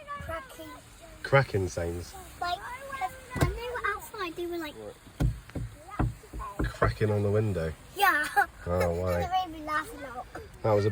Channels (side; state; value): both; identical; correlation 1.00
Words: Cracking. Cracking sounds. Like, when they were outside, they were like... Cracking on the window. Yeah. Oh, why? It made me laugh a lot. That was a